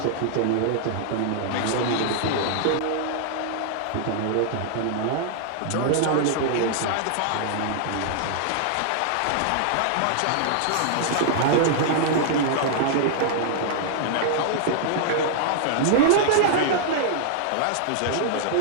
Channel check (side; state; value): both; different; correlation -0.01